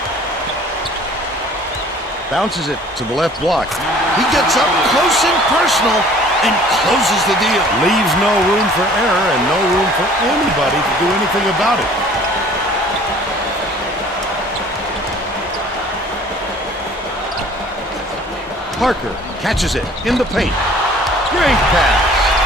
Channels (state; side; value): normal; both; correlation 0.52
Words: Bounces it to the left block. He gets up close and personal and closes the deal. Leaves no room for error and no room for anybody to do anything about it. Parker catches it in the paint. Great